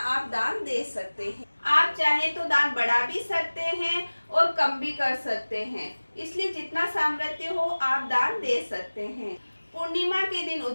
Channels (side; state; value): both; inverted; correlation -1.00